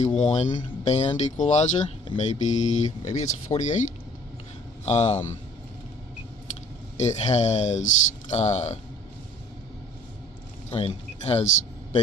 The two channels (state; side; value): normal; both; correlation 0.54